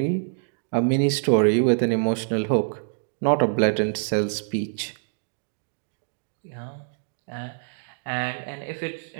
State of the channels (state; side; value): silent; left; digital silence